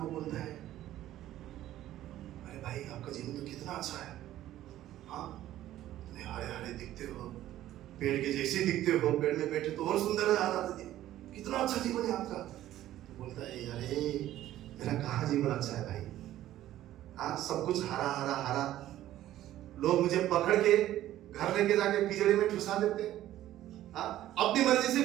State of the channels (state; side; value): quieter; left; 13.5 dB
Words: बोलता है अरे भाई आपका जीवन तो कितना अच्छा है, हाँ हरे हरे दिखते हो, पेड़ के जैसे दिखते हो, पेड़ में बैठे तो और सुंदर नजर आता है, कितना अच्छा जीवन है आपका। तो बोलता है अरे मेरा कहाँ जीवन अच्छा है भाई, हाँ सब कुछ हरा हरा हरा, लोग मुझे पकड़ के घर लेके जाके पिंजड़े में ठुसा देते हैं, हाँ अपनी मर्जी से